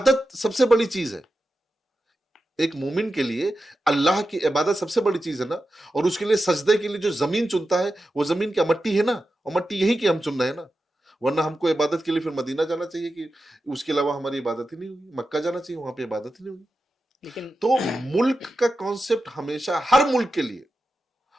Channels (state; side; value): normal; both; correlation 0.91